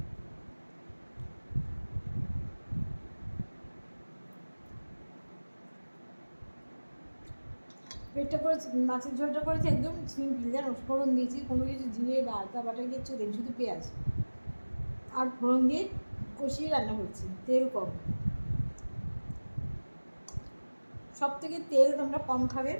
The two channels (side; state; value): both; inverted; correlation -1.00